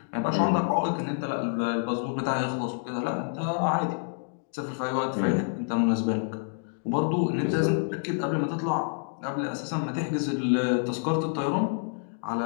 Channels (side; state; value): right; silent; digital silence